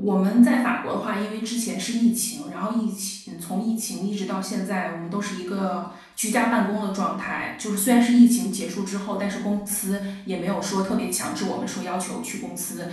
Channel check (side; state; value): both; identical; correlation 1.00